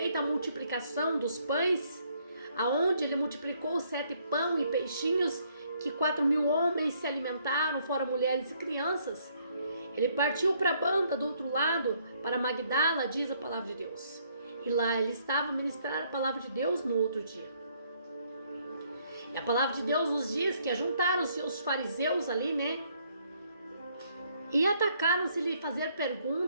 a multiplicação dos pães, aonde ele multiplicou 7 pão e peixinhos, que 4.000 homens se alimentaram, fora mulheres e crianças. Ele partiu para a banda do outro lado, para Magdala, diz a palavra de Deus. E lá ele estava a ministrar a palavra de Deus no outro dia. E a palavra de Deus nos diz que ajuntaram-se os fariseus ali, né? E atacaram-se lhe fazer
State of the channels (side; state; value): both; inverted; correlation -0.68